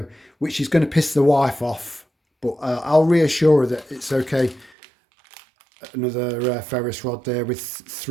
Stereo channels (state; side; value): drops out; left; at 4.7 s